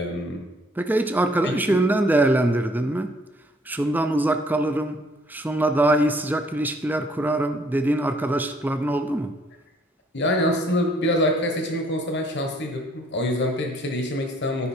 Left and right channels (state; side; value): normal; both; correlation 0.62